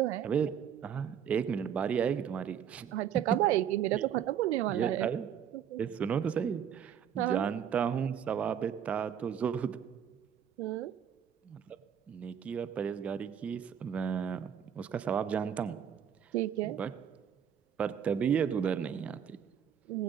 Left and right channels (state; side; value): quieter; left; 8.7 dB